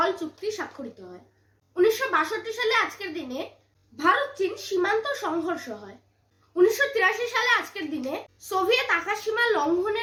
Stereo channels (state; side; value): identical; both; correlation 1.00